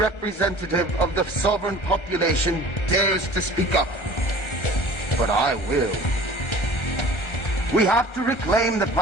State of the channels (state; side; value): late; right; 1.3 ms